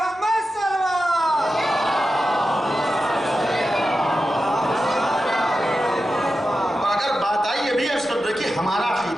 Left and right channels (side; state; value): both; normal; correlation 0.91